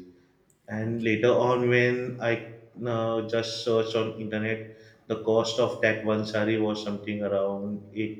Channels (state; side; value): identical; both; correlation 1.00